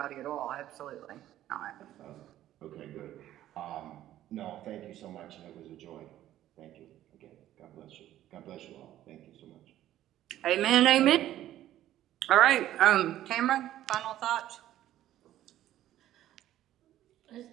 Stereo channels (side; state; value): left; quieter; 13.1 dB